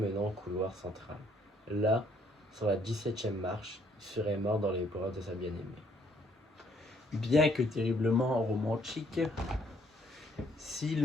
au couloir central. Là, sur la 17e marche, il serait mort dans les bras de sa bien-aimée. Bien que terriblement romantique, si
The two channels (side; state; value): both; normal; correlation 0.66